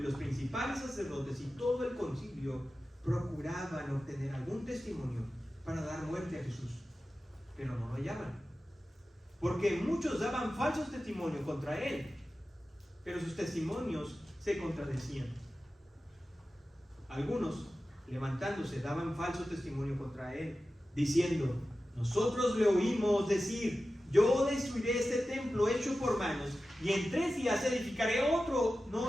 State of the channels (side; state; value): both; normal; correlation 0.94